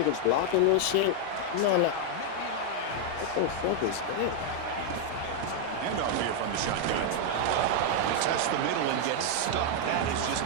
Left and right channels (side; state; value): both; different; correlation 0.00